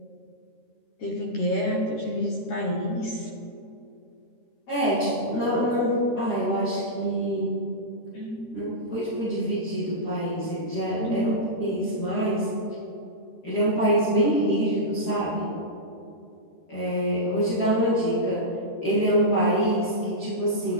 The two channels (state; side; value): late; right; 13 ms